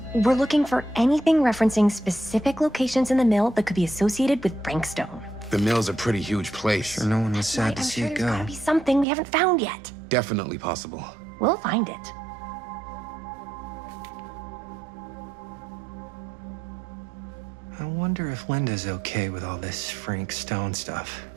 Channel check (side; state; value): left; drops out; at 9.1 s